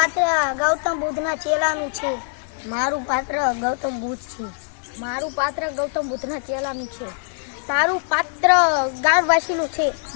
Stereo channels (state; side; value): silent; right; digital silence